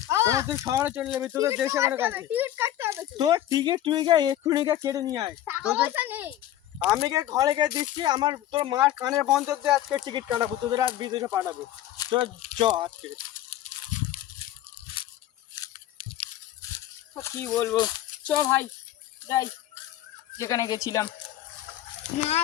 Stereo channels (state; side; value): quieter; right; 12.7 dB